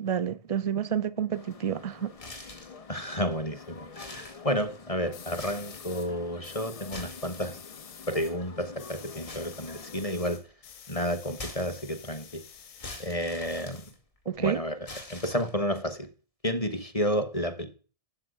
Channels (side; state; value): right; late; 1.7 ms